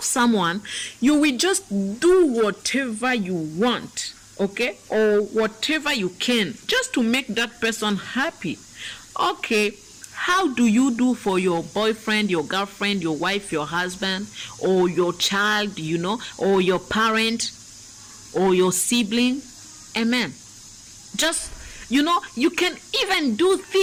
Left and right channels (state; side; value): identical; both; correlation 1.00